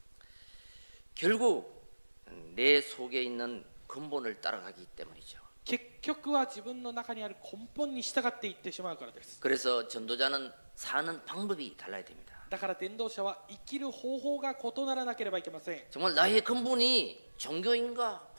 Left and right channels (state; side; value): inverted; both; correlation -1.00